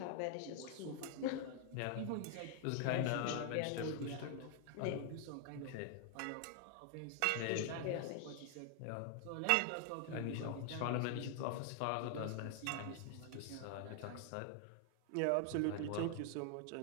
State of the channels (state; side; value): different; both; correlation 0.00